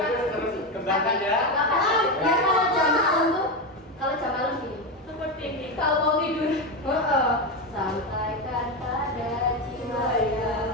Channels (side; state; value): both; normal; correlation 0.13